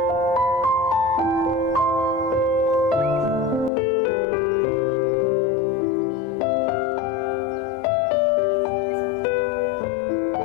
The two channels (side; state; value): right; drops out; at 3.7 s